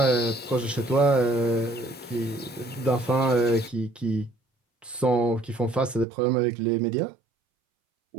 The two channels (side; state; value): left; drops out; at 6.1 s